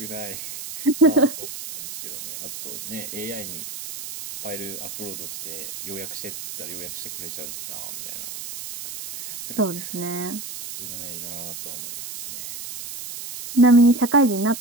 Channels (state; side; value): noise; right; hiss, 9 dB below the sound